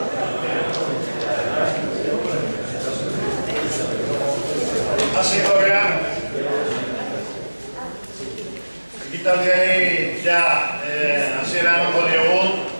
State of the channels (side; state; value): both; inverted; correlation -1.00